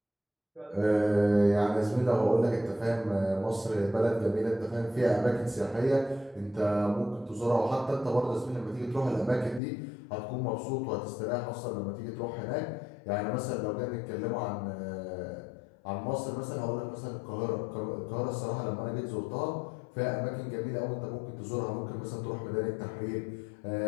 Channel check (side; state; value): right; drops out; at 9.6 s